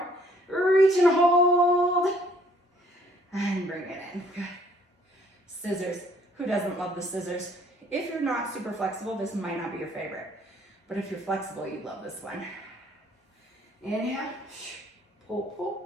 Reach and hold. And bring it in. Good. Scissors. Who doesn't love the scissors? If you're not super flexible, this might not be your favorite. But if you're flexible, you'd love this one. Inhale. Pull,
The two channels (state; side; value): normal; both; correlation 0.61